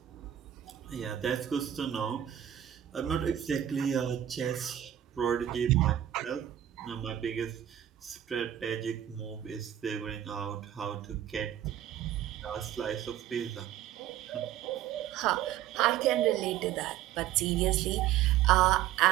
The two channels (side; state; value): left; quieter; 11.5 dB